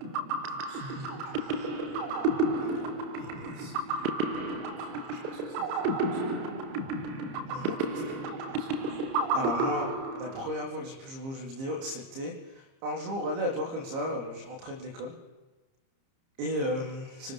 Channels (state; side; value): late; left; 30 ms